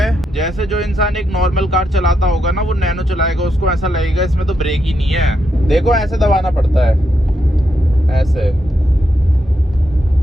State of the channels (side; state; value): both; normal; correlation 0.82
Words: जैसे जो इंसान एक नॉर्मल कार चलाता होगा ना, वो नैनो चलाएगा, उसको ऐसा लगेगा इसमें तो ब्रेक ही नहीं है। देखो ऐसे दबाना पड़ता है, ऐसे।